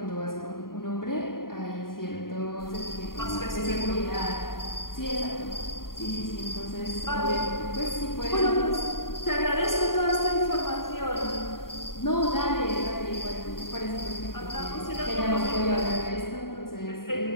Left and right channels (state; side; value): late; right; 0.91 ms